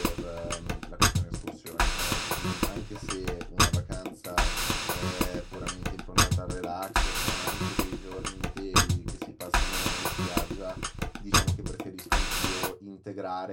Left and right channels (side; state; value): both; identical; correlation 1.00